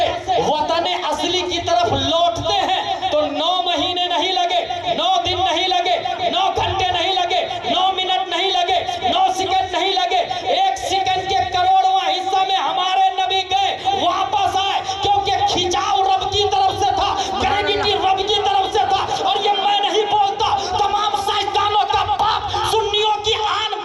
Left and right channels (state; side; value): identical; both; correlation 1.00